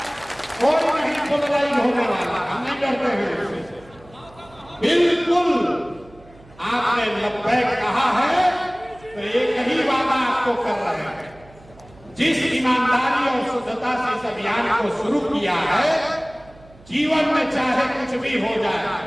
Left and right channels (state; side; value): noise; right; hum, 24 dB below the sound